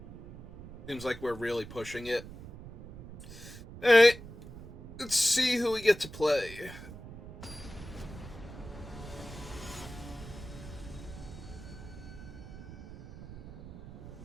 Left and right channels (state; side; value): noise; right; rumble, 14 dB below the sound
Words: seems like we're really pushing it. Alright, let's see who we get to play.